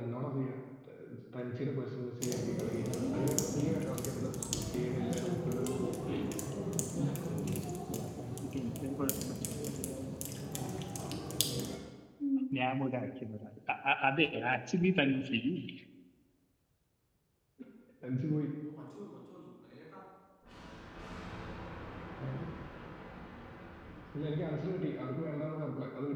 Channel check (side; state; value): both; identical; correlation 1.00